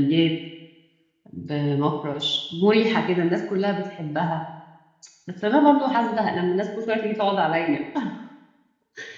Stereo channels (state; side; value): identical; both; correlation 1.00